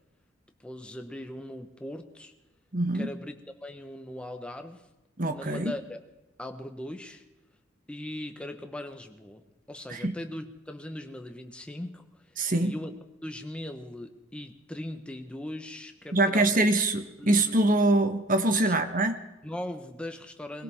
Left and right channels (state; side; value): normal; both; correlation 0.53